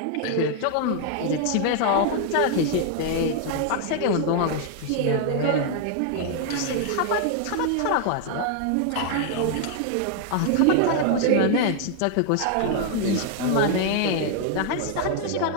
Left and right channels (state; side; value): different; both; correlation 0.00